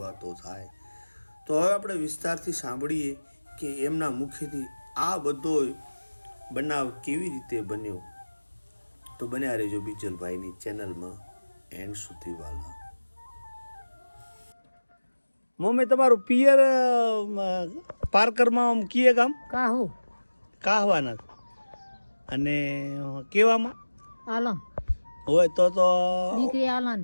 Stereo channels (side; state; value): both; inverted; correlation -1.00